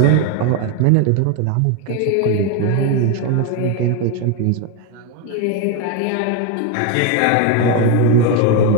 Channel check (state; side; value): different; both; correlation 0.02